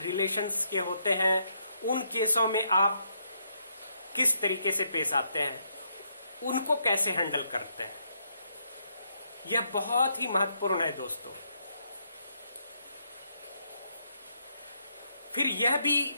के होते हैं, उन केसों में आप किस तरीके से पेश आते हैं, उनको कैसे हैंडल करते हैं। यह बहुत ही महत्वपूर्ण है दोस्तों। फिर यह भी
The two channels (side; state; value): both; inverted; correlation -0.75